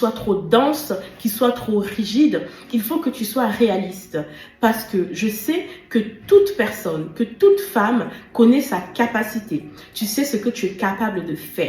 trop dense, qui soit trop rigide. Il faut que tu sois réaliste parce que je sais que toute personne, que toute femme connaît sa capacité. Tu sais ce que tu es capable de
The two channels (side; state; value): both; identical; correlation 1.00